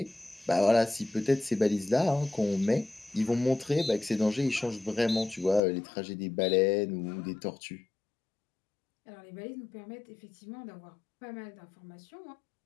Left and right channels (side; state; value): right; drops out; at 5.6 s